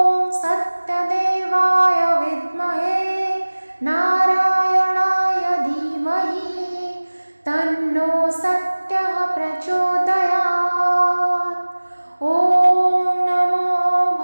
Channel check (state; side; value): inverted; both; correlation -1.00